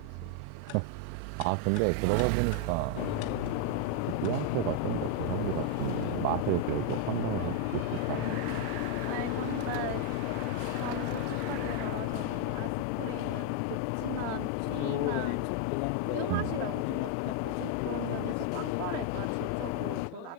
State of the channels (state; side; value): different; both; correlation 0.00